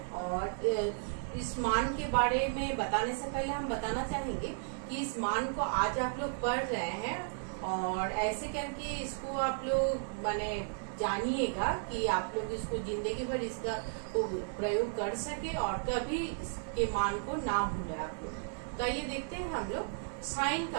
और इस मान के बारे में बताने से पहले हम बताना चाहेंगे कि इस मान को आज आप लोग पढ़ रहे हैं और ऐसे करके इसको आप लोग माने जानिएगा कि आप लोग इसको जिंदगी भर इसका प्रयोग कर सके और कभी इसके मान को ना भूले आप लोग। तो आइए देखते हैं हम लोग साइन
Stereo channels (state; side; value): silent; left; digital silence